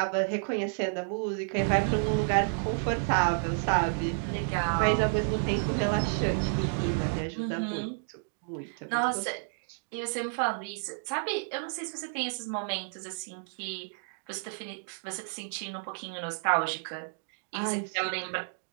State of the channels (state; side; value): silent; left; digital silence